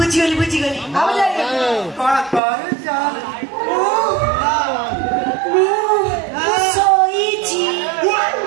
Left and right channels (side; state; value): left; drops out; at 2.4 s